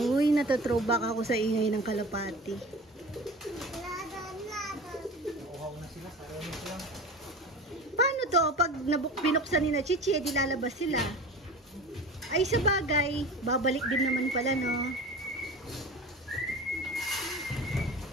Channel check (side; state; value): both; normal; correlation 0.35